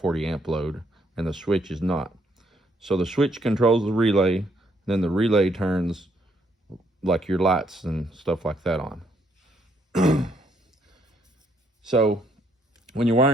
amp load, and the switch is not. So the switch controls the relay, then the relay turns like your lights and stuff like that on. So when you're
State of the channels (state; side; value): normal; both; correlation 0.71